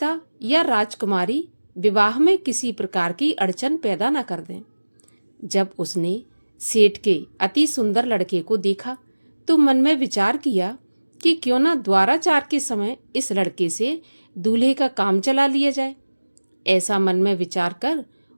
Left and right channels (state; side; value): inverted; both; correlation -1.00